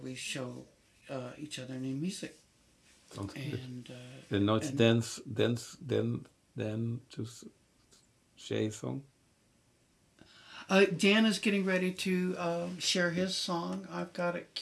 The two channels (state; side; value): identical; both; correlation 1.00